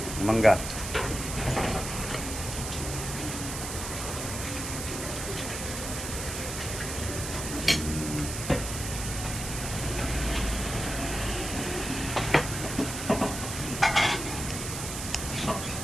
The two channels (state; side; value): noise; right; hiss, 6 dB below the sound